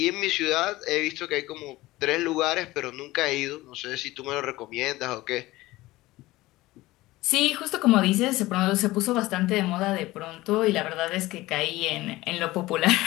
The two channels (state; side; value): quieter; right; 18.5 dB